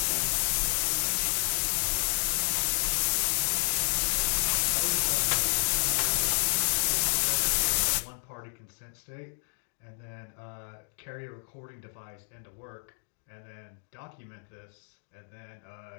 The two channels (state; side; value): silent; right; digital silence